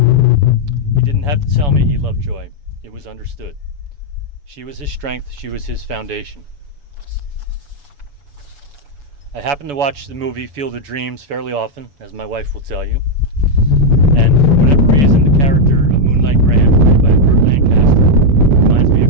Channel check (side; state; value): left; late; 7.0 ms